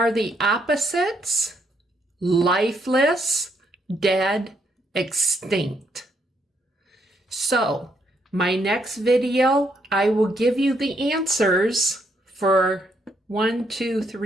the opposites? Lifeless, dead, extinct. So, my next video, I will give you the answers for 1, 2,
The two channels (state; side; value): normal; both; correlation 0.74